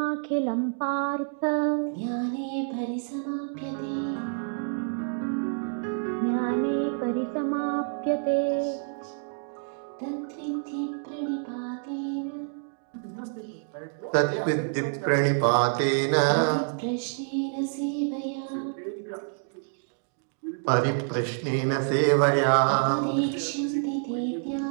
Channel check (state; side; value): silent; left; 59 dB below the other